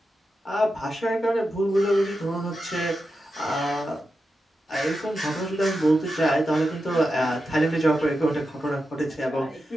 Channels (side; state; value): both; normal; correlation 0.89